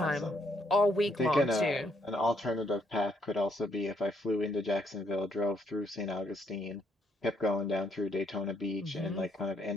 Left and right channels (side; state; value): both; normal; correlation 0.72